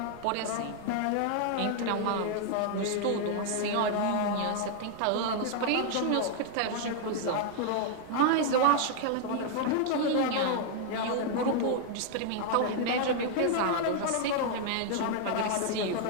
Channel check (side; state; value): both; different; correlation 0.00